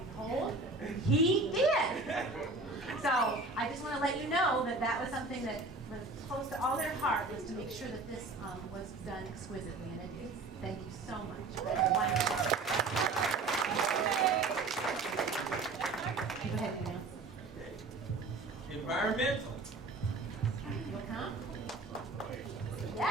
behold, he did. So I just want to let you know that that was something that was close to all their heart, was to make sure that this was done exquisitely. And it is. Thank you so much. That was wonderful. Go ahead, Neil. Environmental. You'll come?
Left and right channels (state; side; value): quieter; left; 3.5 dB